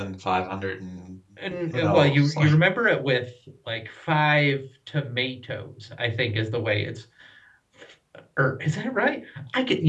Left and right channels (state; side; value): identical; both; correlation 1.00